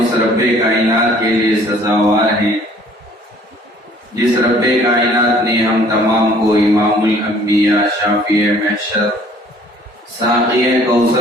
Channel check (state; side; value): normal; both; correlation 0.56